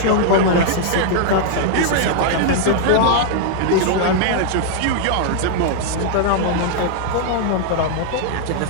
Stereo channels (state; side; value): different; both; correlation 0.00